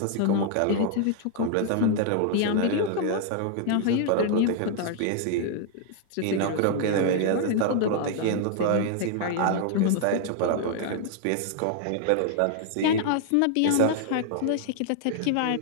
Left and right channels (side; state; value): both; different; correlation 0.00